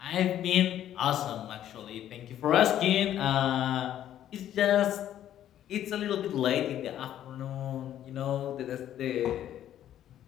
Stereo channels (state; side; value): quieter; right; 11.4 dB